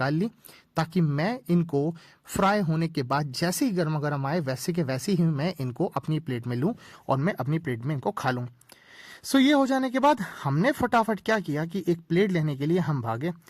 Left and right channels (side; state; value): both; identical; correlation 1.00